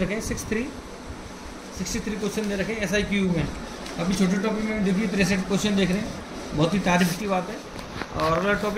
हैं। 63 क्वेश्चन दे रखे हैं SIQ में। अभी छोटे टॉपिक में देखिए 63 क्वेश्चन देख रहे हैं, बहुत ही तारीफ की बात है। और अगला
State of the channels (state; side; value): identical; both; correlation 1.00